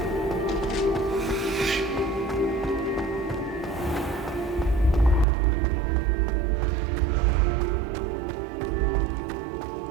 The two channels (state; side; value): drops out; left; at 5.2 s